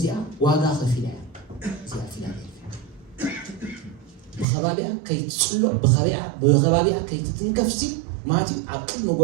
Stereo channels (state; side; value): drops out; left; at 4.5 s